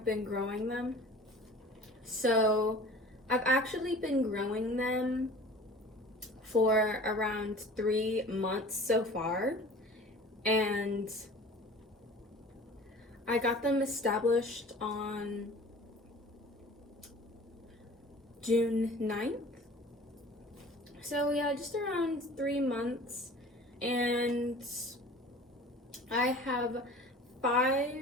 been growing them. So I've actually been growing them for around 3 months so far, and I got them established on June 9th. So yeah, just around 3 months. And I have 5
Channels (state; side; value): normal; both; correlation 0.44